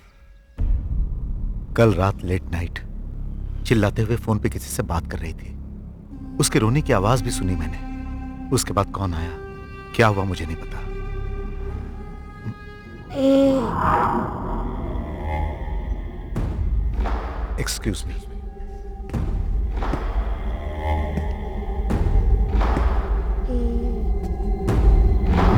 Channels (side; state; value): both; identical; correlation 1.00